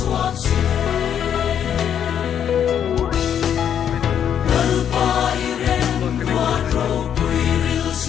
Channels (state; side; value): quieter; right; 9.0 dB